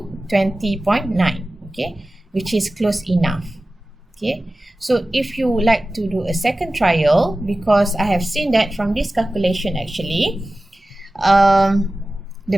20.9, okay, which is close enough. Okay, so if you would like to do a second trial, because I have seen that from this calculation actually, the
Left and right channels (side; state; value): both; normal; correlation 0.96